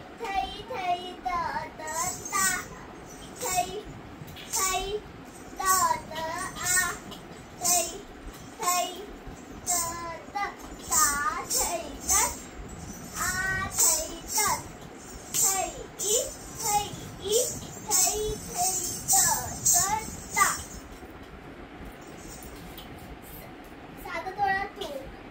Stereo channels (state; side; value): identical; both; correlation 1.00